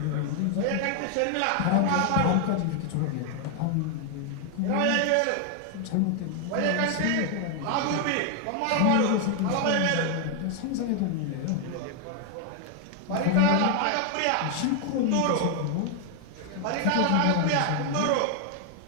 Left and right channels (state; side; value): different; both; correlation 0.00